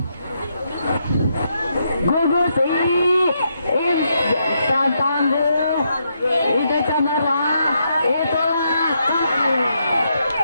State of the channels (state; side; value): inverted; both; correlation -0.79